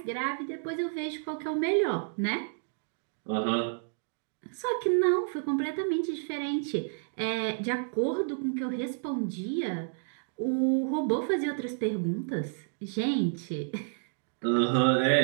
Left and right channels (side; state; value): left; silent; digital silence